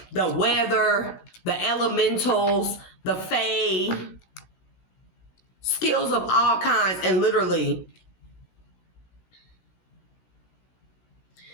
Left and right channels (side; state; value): right; late; 16 ms